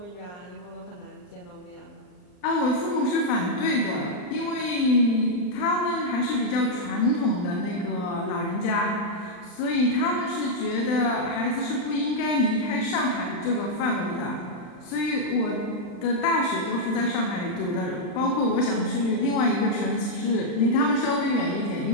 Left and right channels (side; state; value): right; late; 39 ms